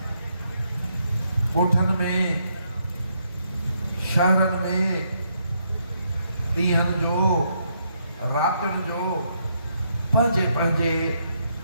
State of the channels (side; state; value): both; inverted; correlation -0.75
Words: ॻोठनि में शहरनि में ॾींहंनि जो रातिनि जो पंहिंजे पंहिंजे